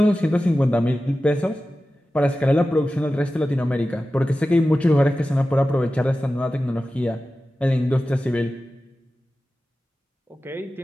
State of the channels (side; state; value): both; normal; correlation 0.94